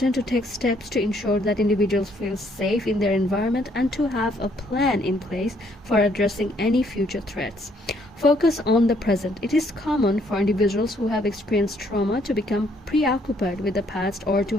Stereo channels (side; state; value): both; normal; correlation 0.67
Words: to take steps to ensure that individuals feel safe in their environment and to have a plan in place for addressing any future threats. Focus on the present. It is common for individuals who have experienced trauma to become preoccupied with the past or to